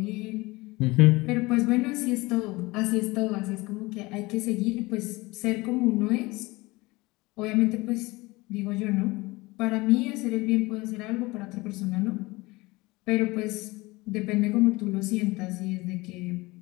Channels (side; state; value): right; quieter; 22.1 dB